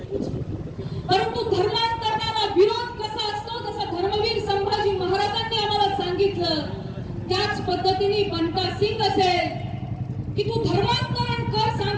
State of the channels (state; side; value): identical; both; correlation 1.00